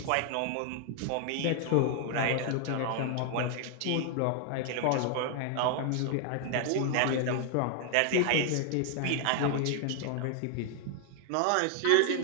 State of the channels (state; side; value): different; both; correlation 0.00